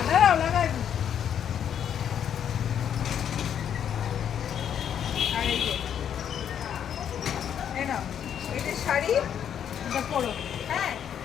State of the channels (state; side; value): quieter; right; 9.0 dB